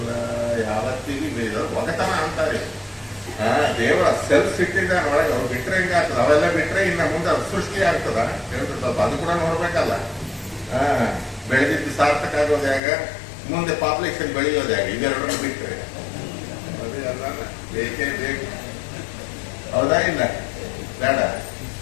ಯಾವತ್ತಿಗೂ ಬೇಡ ಒಗತನ ಅಂತಾರೆ. ದೇವರ ಸೆಲ್ಫ್ ಇಟ್ಟಿದ್ದಾನೆ ಒಳಗೆ. ಅವ್ರು ಬಿಟ್ರೆ ಹಿಂಗಾಗ್ತದ, ಅವೆಲ್ಲ ಬಿಟ್ರೆ ಇನ್ನ ಮುಂದೆ ಸೃಷ್ಟಿ ಆಗ್ತದ ಹೇಳ್ತಾರೆ. ಸ್ವಲ್ಪ ಅದು ಕೂಡ ನೋಡ್ಬೇಕಲ್ಲ. ಬೆಳೆದಿದ್ದು ಸಾರ್ಥಕ ಆಗೋದು ಹೇಗ, ಮುಂದೆ ಪಾಪ್ಯುಲೇಷನ್ ಬೆಳೆಯೋದು ಹೇಗೆ, ಇವೆರಡನ್ನು ಬಿಟ್ರೆ ಅದೇ ಅಲ್ಲ. ಬೇಕೇ ಬೇಕು, ಹೌದಾ ಇಲ್ಲ? ಬೇಡ.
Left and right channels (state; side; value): drops out; right; at 12.8 s